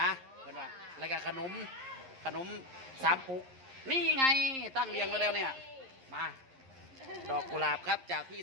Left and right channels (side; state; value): left; late; 11 ms